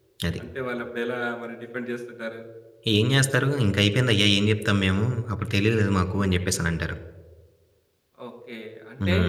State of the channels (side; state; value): both; identical; correlation 1.00